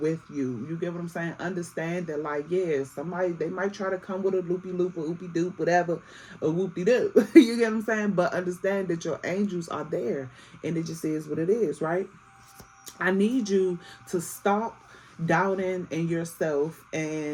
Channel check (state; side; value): identical; both; correlation 1.00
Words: you. You get what I'm saying? Understand that, like, yeah, somebody, they might try to come with a loopy loop or oopy doop, whatever, a whoopty doo. You get what I'm saying? But understand that your angels are there, and it just is what it is, right? I need you to stop doubting in yourself